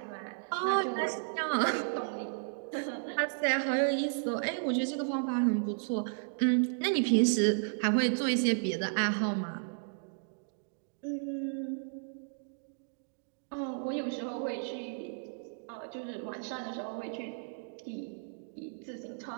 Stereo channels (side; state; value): left; silent; digital silence